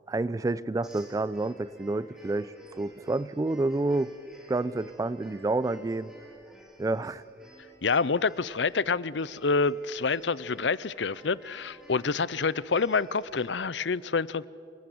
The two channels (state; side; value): normal; both; correlation 0.21